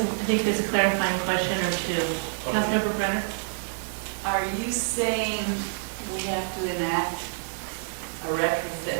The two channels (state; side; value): silent; left; digital silence